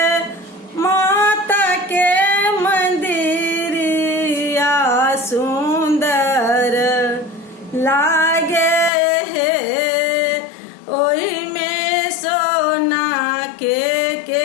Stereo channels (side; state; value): right; drops out; at 8.9 s